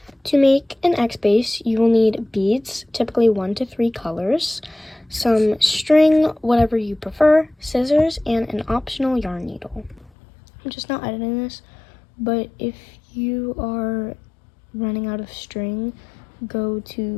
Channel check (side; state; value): right; drops out; at 10.1 s